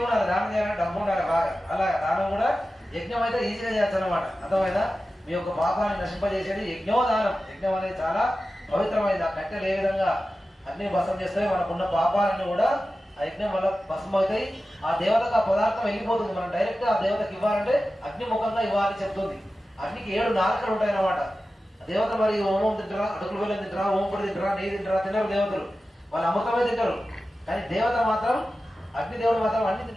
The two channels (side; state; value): both; normal; correlation 0.94